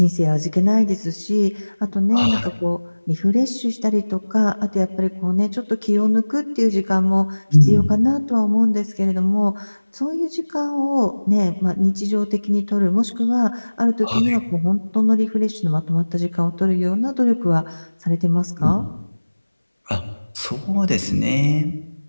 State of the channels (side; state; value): both; inverted; correlation -1.00